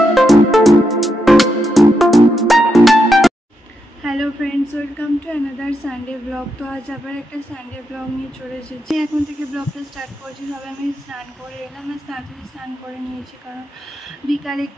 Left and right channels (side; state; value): both; normal; correlation 0.83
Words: friends, welcome to another Sunday blog. तो आज आबार एक सानडे ब्लग नहीं चले एसेছি। এখন থেকে ব্লগটা স্টার্ট করছি। সবে আমি স্নান করে এলাম, তাড়াতাড়ি স্নান করে নিয়েছি কারণ বিকালে